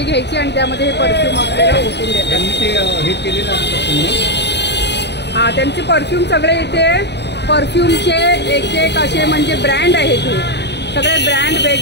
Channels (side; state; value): right; late; 0.50 ms